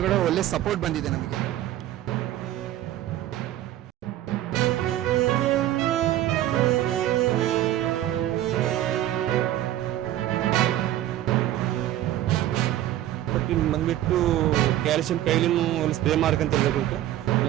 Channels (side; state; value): left; quieter; 13.4 dB